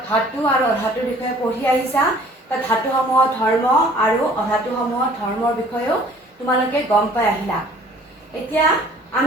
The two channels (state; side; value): normal; both; correlation 0.53